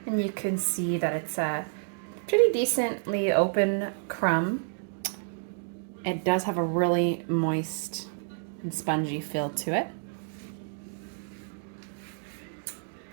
and you can see that it's a pretty decently open crumb. It does have a really moist and spongy feel to it.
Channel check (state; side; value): silent; left; digital silence